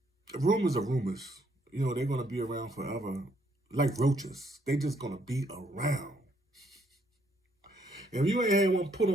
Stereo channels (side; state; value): both; normal; correlation 0.70